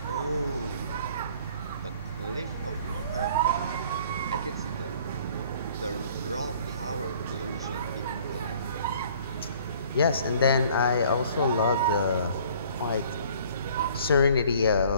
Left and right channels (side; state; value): both; inverted; correlation -0.54